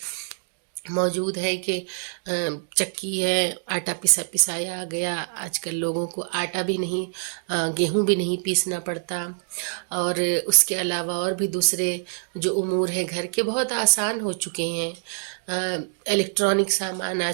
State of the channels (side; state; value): left; silent; 62 dB below the other